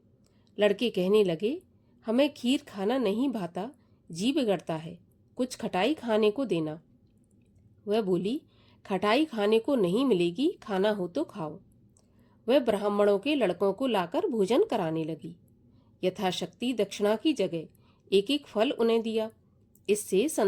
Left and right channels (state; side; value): identical; both; correlation 1.00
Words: लड़के कहने लगे, हमें खीर खाना नहीं भाता, जी बिगड़ता है, कुछ खटाई खाने को देना। वह बोली, खटाई खाने को नहीं मिलेगी, खाना हो तो खाओ। वह ब्राह्मणों के लड़कों को लाकर भोजन कराने लगी। यथाशक्ति दक्षिणा की जगह एक एक फल उन्हें दिया। इससे